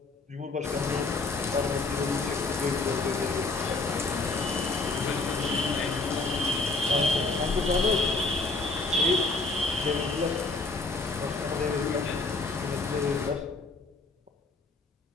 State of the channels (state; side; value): quieter; right; 3.5 dB